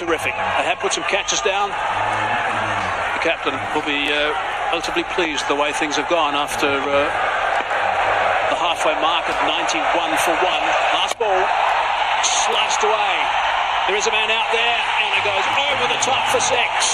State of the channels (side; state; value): both; identical; correlation 1.00